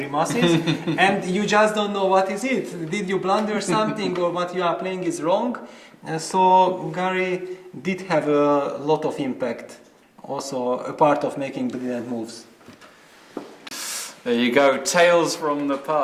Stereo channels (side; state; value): both; identical; correlation 1.00